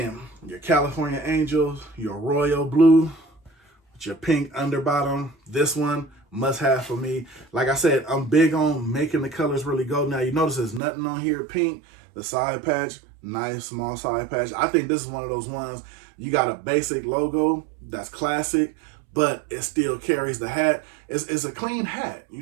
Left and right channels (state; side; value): drops out; left; at 10.8 s